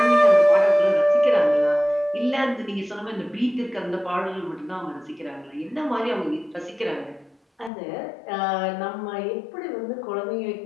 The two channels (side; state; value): right; drops out; at 7.7 s